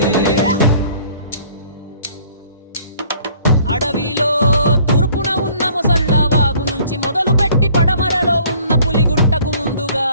అడవిలో తూర్పున ఉన్న ముసళ్ళ వాగు నుంచి మొదలు పెట్టి పడమరలో ఉన్న పులిగుట్టకు ముందుగా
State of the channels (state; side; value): inverted; both; correlation -0.55